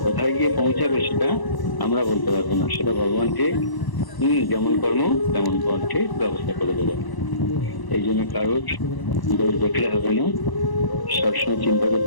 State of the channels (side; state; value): right; late; 1.0 ms